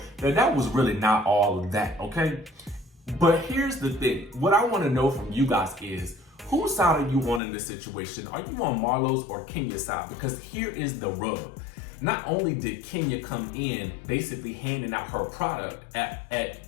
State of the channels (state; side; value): drops out; right; at 7.4 s